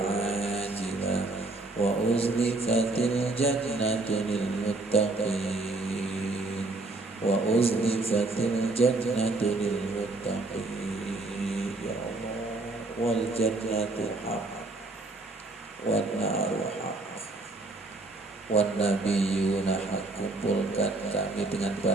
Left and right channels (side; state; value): left; quieter; 3.1 dB